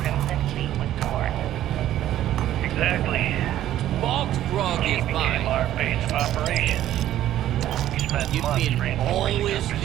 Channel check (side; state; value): left; quieter; 12.7 dB